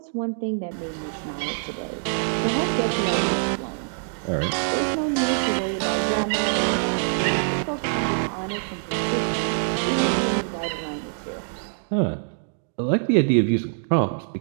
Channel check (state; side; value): silent; left; digital silence